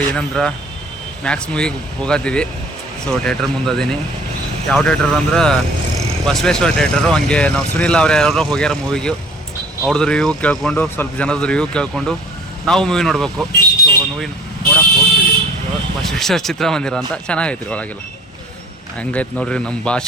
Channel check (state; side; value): normal; both; correlation 0.50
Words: ಏನಂದ್ರೆ ಮ್ಯಾಕ್ಸ್ ಮೂವಿಗೆ ಹೋಗತ್ತೀವಿ. ಸೊ ಥಿಯೇಟ್ರ್ ಮುಂದದೀನಿ. ಯಾವ ಥಿಯೇಟ್ರ್ ಅಂದ್ರೆ ಬಸವೇಶ್ವರ ಥಿಯೇಟರು. ಹಂಗೆ ನಾವು ಸುನಿಲ್ ಅವ್ರು ಯಾರೋ ಹೋಗ್ಯಾರ ಮೂವಿಗೆ. ಅವ್ರದ್ದು ರಿವ್ಯೂ ಕೇಳ್ಕೊಂಡು, ಸ್ವಲ್ಪ ಜನದ ರಿವ್ಯೂ ಕೇಳ್ಕೊಂಡು ನಾವು ಮೂವಿ ನೋಡಬೇಕು. ಸೊ ಮೂವಿ ನೋಡಕ್ಕೆ ಹೋಗ್ತೀವಿ. ಬಸವೇಶ್ವರ ಚಿತ್ರಮಂದಿರ ಅಂತ ಚೆನ್ನಾಗೈತಿ ರೀ ಒಳಗೆಲ್ಲ. ಹಂಗೈತೆ ನೋಡ್ರಿ ನಮ್ಮ